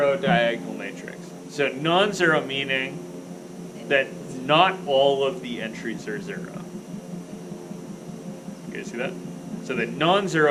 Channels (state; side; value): identical; both; correlation 1.00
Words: diagonal matrix. So non-zero meaning that not all of the entries are 0. You guys see that? So the